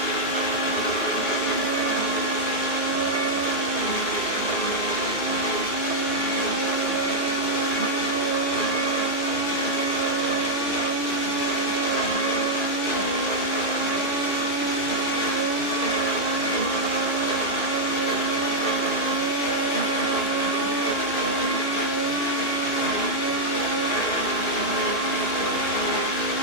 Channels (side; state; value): both; normal; correlation -0.03